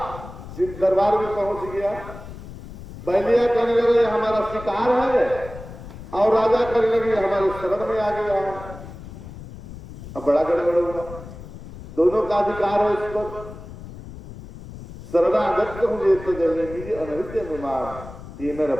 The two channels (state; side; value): noise; left; rumble, 14 dB below the sound